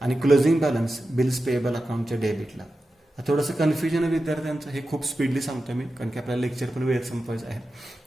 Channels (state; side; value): normal; both; correlation 0.92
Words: आणि क्लोजिंग बॅलन्स बिल्स पेएबल अकाउंटच्या डेबिटला. थोडंसं कन्फ्युजन आहे विद्यार्थ्यांचं, हे खूप स्पीडली सांगतो मी कारण की आपल्याला लेक्चर पण वेळेत संपवायचं आहे.